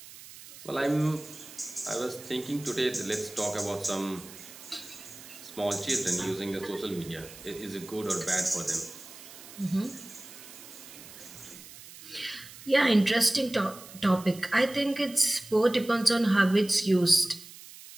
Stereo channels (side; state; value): right; noise; hiss, 17 dB below the sound